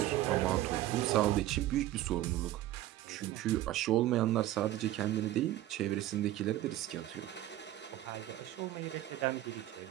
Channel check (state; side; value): quieter; left; 14.5 dB